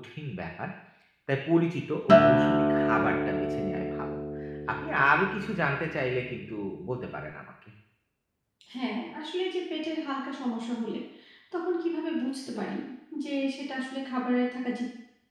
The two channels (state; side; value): identical; both; correlation 1.00